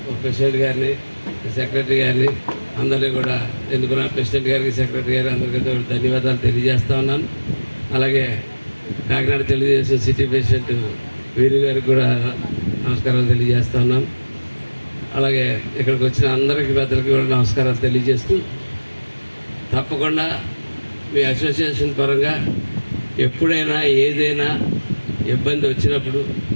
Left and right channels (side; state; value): both; inverted; correlation -1.00